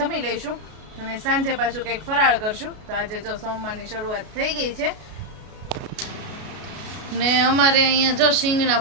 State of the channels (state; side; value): late; left; 33 ms